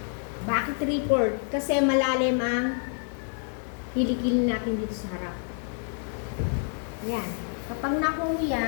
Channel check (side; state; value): right; silent; 59 dB below the other